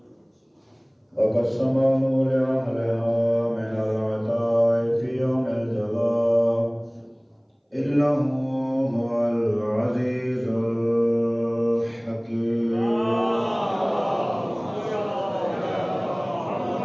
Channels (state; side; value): identical; both; correlation 1.00